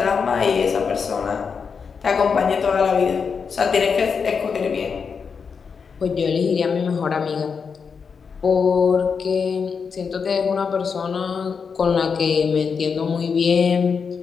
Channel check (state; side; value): quieter; right; 5.8 dB